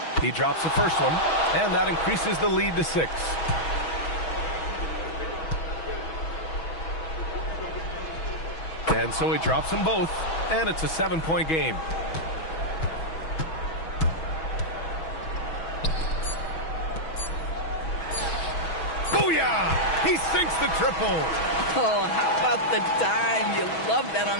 He drops the first one, and that increases the lead to 6. And so he drops them both, and it's a 7-point game. Booyah! He sinks the triple. Oh, how about the dime? You love that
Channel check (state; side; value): late; right; 6.2 ms